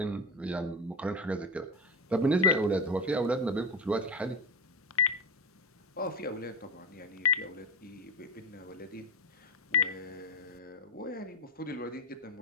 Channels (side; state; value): both; normal; correlation 0.20